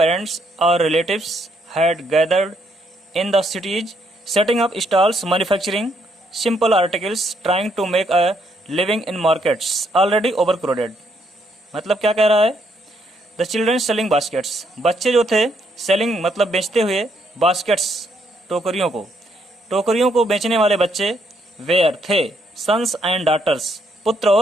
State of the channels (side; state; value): both; normal; correlation 0.73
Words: or relatives had gathered in the cities, setting up stalls, manufacturing simple articles, trying to make a living in markets already overcrowded। मतलब क्या कह रहा है? The children selling baskets, बच्चे जो थे selling मतलब बेचते हुए, baskets टोकरियों को बेचने वाले बच्चे were थे sons and daughters, पुत्र